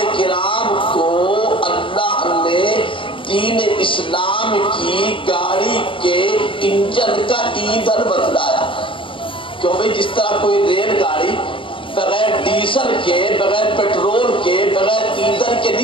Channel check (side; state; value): right; late; 0.25 ms